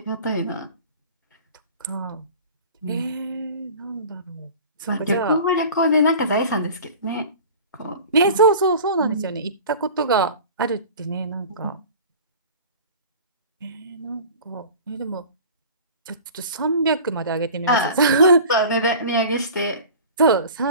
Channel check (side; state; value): both; inverted; correlation -0.40